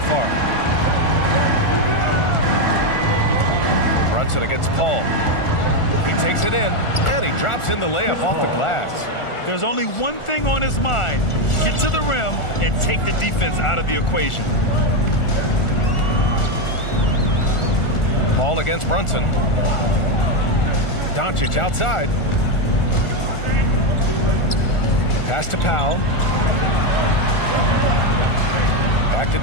Brunson against Paul. He takes it in, and he drops in the layup off the glass. There's only one thing on his mind. Get to the rim and take the defense out of the equation. Paul against Brunson. Doncic outside. Pass to Powell. Back to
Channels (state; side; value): late; right; 1.4 ms